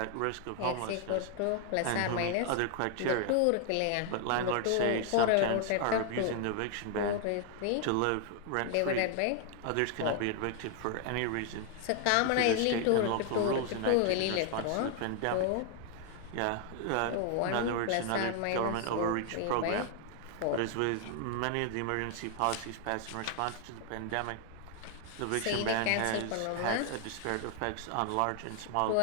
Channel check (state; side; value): different; both; correlation 0.00